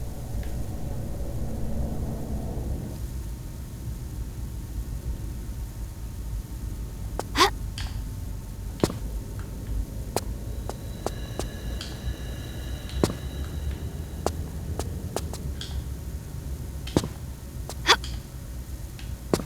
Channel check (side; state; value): both; identical; correlation 1.00